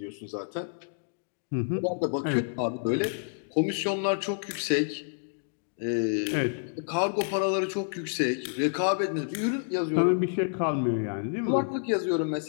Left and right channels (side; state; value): right; silent; digital silence